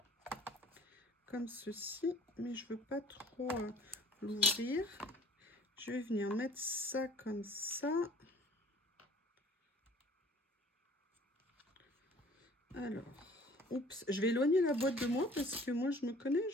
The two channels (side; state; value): both; normal; correlation 0.52